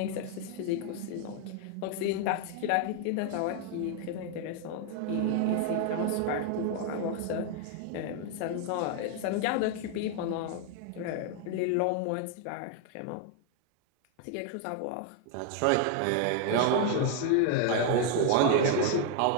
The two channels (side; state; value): both; different; correlation 0.00